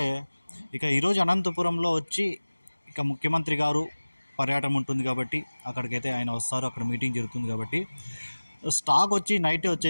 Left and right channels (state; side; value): inverted; both; correlation -1.00